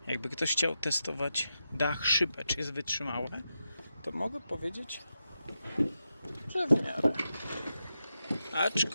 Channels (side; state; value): both; inverted; correlation -0.88